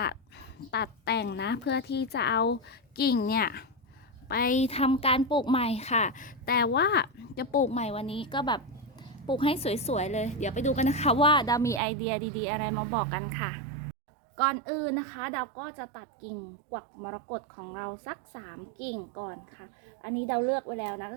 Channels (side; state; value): left; drops out; at 11.8 s